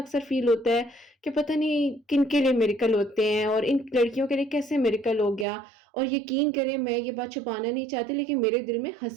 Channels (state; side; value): drops out; left; at 5.5 s